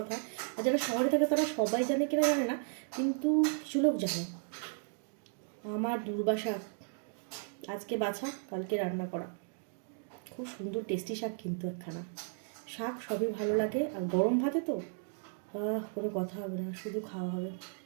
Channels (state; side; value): silent; left; 55 dB below the other